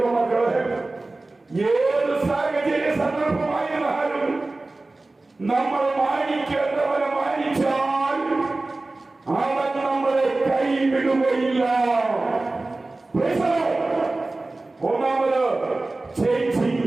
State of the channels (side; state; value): left; quieter; 3.1 dB